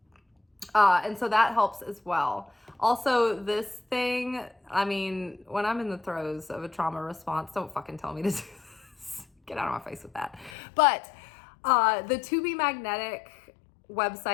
And so that helps as well. Also, this thing, when I'm in the throes of a trauma response, don't fucking tell me to do this. Get out of my face with that. But the To Be Magnetic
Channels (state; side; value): drops out; right; at 10.6 s